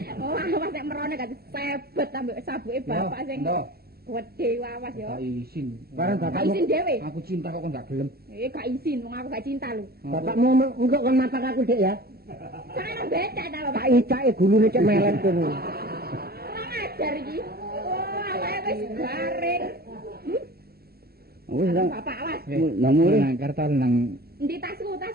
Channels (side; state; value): left; late; 0.45 ms